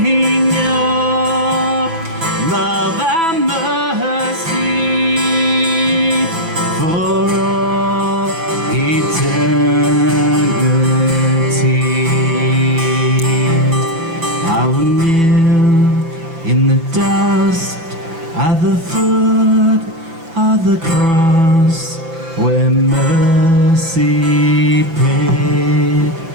your love and mercy for all eternity. I will kneel in the dust at the foot of the cross where mercy paid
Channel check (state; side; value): late; left; 6.1 ms